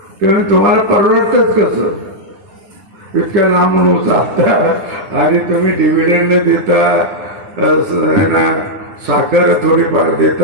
तेव्हा तुम्हाला परवडतच कसं? इतक्या लांबून जाता आणि तुम्ही डिव्हिडंड देता, ना साखर थोडीफार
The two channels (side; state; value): left; late; 9.9 ms